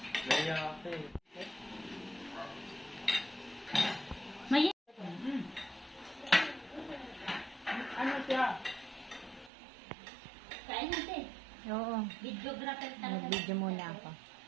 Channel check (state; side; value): drops out; left; at 9.5 s